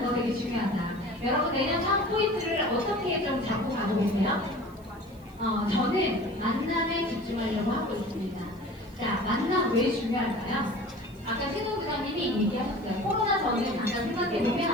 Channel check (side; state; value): right; noise; hiss, 28 dB below the sound